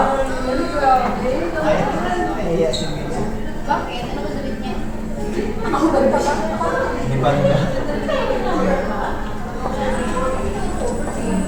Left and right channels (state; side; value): identical; both; correlation 1.00